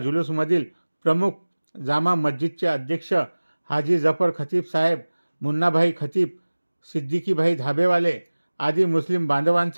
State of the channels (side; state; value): both; inverted; correlation -1.00